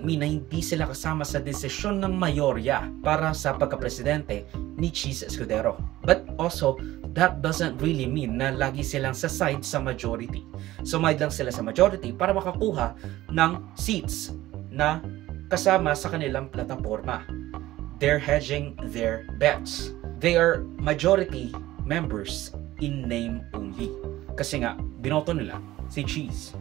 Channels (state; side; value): quieter; left; 16.0 dB